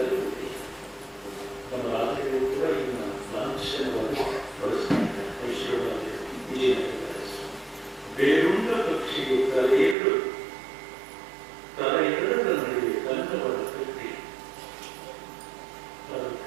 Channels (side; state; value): left; drops out; at 10.0 s